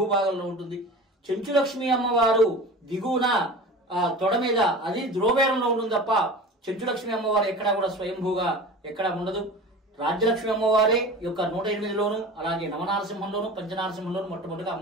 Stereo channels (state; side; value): normal; both; correlation 0.35